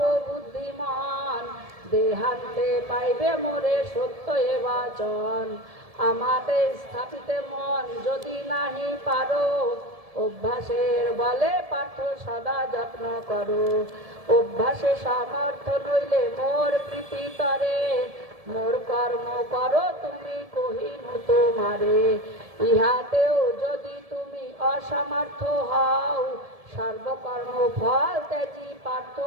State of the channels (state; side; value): late; left; 1.7 ms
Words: বুদ্ধিমান, দেহান্তে পাইবে মোরে সত্য এ বাচন। আমাতে স্থাপিত মন যদি নাহি পারো, অভ্যাসের বলে পার্থ সদা যত্ন করো। অভ্যাসে সামর্থ্য নইলে মোর প্রীতি তরে, মোর কর্ম করো তুমি কহিনু তোমারে। ইহাতেও যদি তুমি অসমর্থ হও, সর্বকর্ম ফল ত্যাজি পার্থ